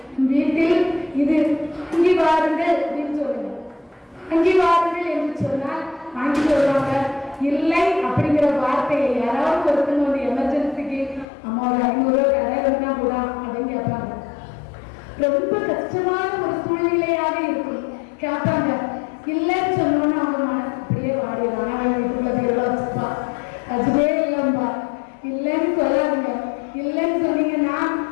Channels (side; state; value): right; drops out; at 11.2 s